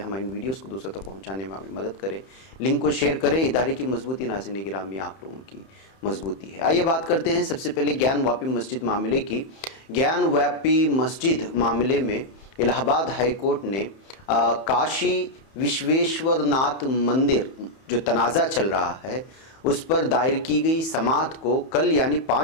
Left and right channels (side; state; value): right; late; 31 ms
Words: ہماری ویڈیوز کو دوسروں تک پہنچانے میں ہماری مدد کریں، لنک کو شیئر کریں۔ ادارے کی مضبوطی ناظرین گرامی آپ لوگوں کی مضبوطی ہے۔ آئیے بات کرتے ہیں سب سے پہلے گیان واپی مسجد معاملے کی۔ گیان واپی مسجد معاملے میں الہ آباد ہائی کورٹ نے کاشی وشویشور ناتھ مندر جو تنازع چل رہا ہے اس پر دائر کی گئی سماعت کو کل یعنی